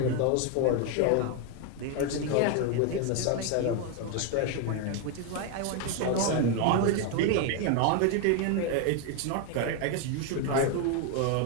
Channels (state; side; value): different; both; correlation 0.01